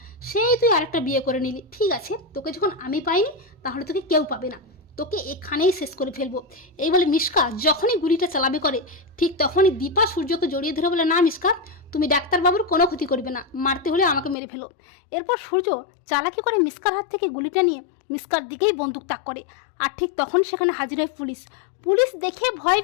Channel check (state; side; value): drops out; right; at 14.4 s